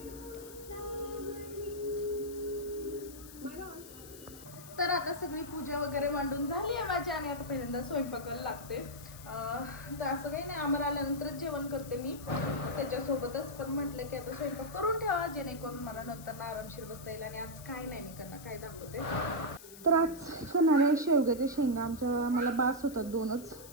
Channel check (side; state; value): left; noise; hiss, 16 dB below the sound